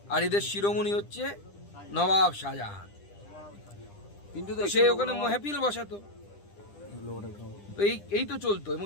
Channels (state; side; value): late; right; 10 ms